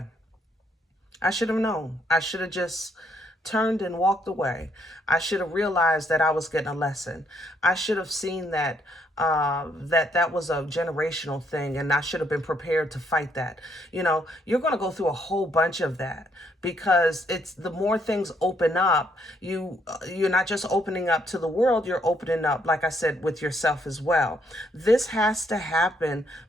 I should have known. I should have just turned and walked away. I should have realized that I was getting a lesson. I should have seen that that was a generational thing, and I should have been prepared to fight that. You know, you're going to go through a whole bunch of that because it's the more things open up, you're not just opening up to the world, you're opening up, like I said, with yourself as well. This has to happen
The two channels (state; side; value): normal; both; correlation 0.72